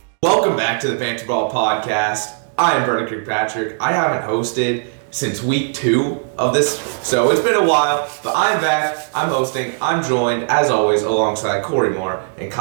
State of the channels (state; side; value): silent; left; digital silence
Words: Welcome back to the Banter podcast. I am Brennan Kirkpatrick. I haven't hosted since week 2 of this, so it's been a while, but I'm back. I'm hosting. I'm joined, as always, alongside Korey and